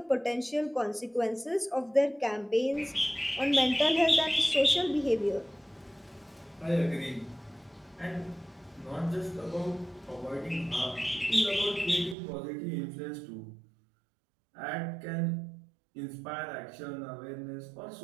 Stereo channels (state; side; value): drops out; left; at 12.2 s